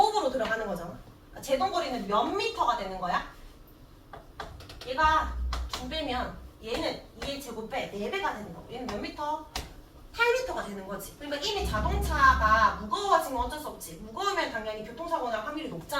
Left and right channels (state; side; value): identical; both; correlation 1.00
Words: 들어가는 거잖아. 제동거리는 몇 미터가 되는 거야? 얘가 2배면 얘는 2의 제곱배 4배가 되는 거고 얘는 몇 미터? 8m가 되는 거지. 그러니까 이미 자동차가 무거워지면 어쩔 수 없지. 무거우면 당연히 교통사고 날 확률이